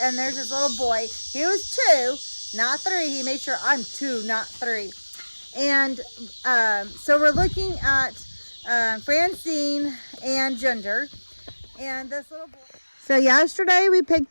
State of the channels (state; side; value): inverted; both; correlation -1.00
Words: and there's this little boy. He was 2, not 3. He made sure I'm 2, not 3. And so we're looking at Francine and Ginger, and this little boy. So yesterday we